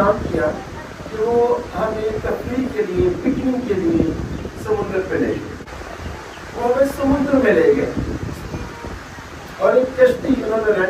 کیا کہ وہ ہمیں تفریح کے لیے، پکنک کے لیے سمندر پہ لے گئے۔ وہ ہمیں سمندر میں لے گئے اور ایک کشتی انہوں نے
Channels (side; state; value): both; identical; correlation 1.00